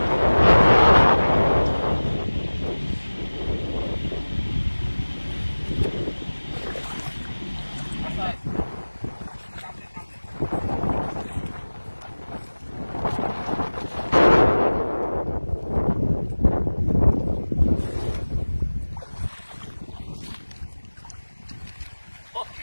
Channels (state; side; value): inverted; both; correlation -1.00